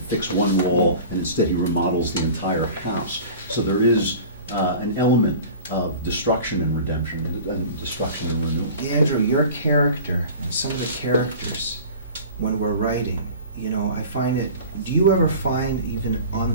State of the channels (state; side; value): inverted; both; correlation -0.40